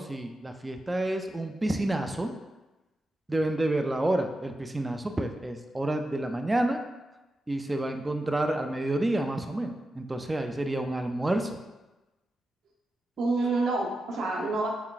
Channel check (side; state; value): both; normal; correlation 0.90